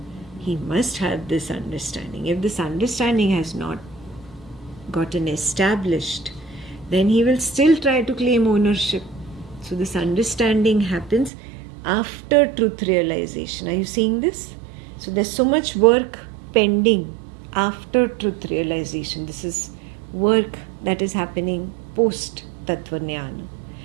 He must have this understanding. If this understanding has not gotten established, then he will still try to claim ownership. So this understanding happens after truth realization. Are you seeing this? So there's so much work pending after truth realization. This is work that is happening post Tattva Jnana.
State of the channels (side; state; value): left; drops out; at 11.3 s